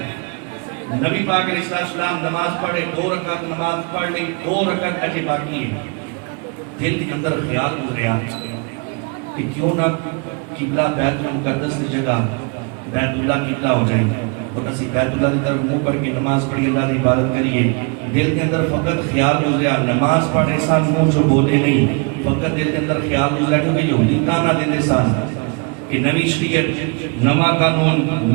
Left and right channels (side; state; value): left; quieter; 32.8 dB